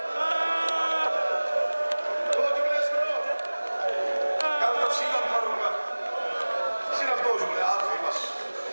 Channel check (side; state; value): both; inverted; correlation -1.00